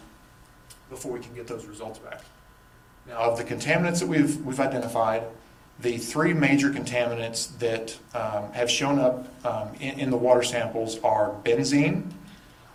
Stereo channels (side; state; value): both; identical; correlation 1.00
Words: before we can get those results back. Now, of the contaminants that we've identified, the 3 major contaminants that have shown up in the water samples are benzene,